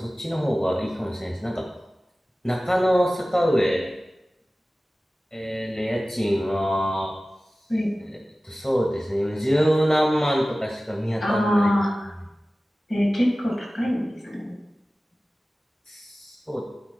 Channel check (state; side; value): normal; both; correlation 0.97